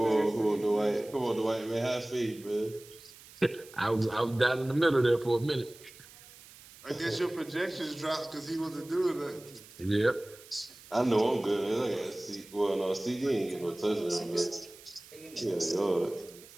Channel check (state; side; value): noise; right; hiss, 20 dB below the sound